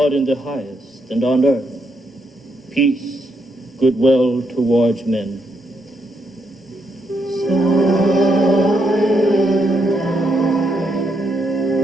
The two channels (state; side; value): normal; both; correlation 0.78